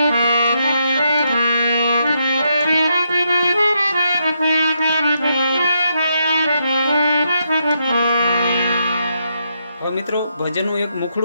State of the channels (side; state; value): both; inverted; correlation -0.79